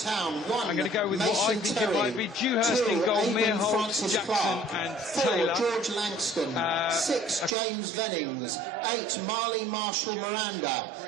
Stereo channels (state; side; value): drops out; left; at 7.6 s